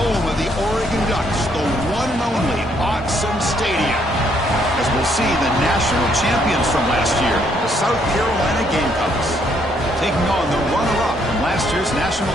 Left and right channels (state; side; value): normal; both; correlation 0.70